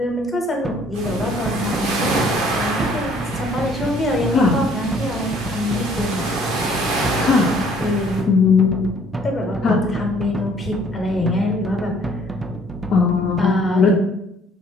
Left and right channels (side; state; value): both; normal; correlation 0.59